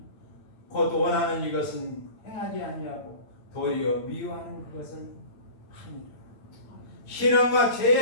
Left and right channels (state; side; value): late; right; 8.9 ms